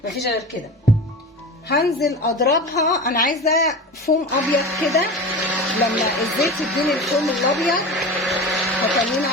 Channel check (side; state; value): both; normal; correlation 0.31